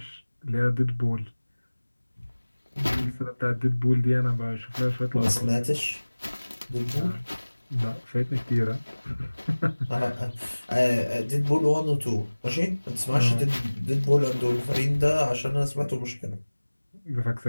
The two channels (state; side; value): inverted; both; correlation -1.00